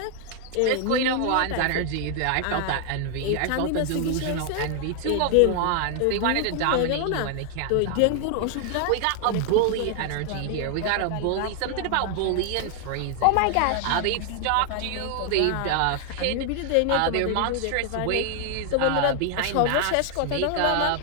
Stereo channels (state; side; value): different; both; correlation 0.00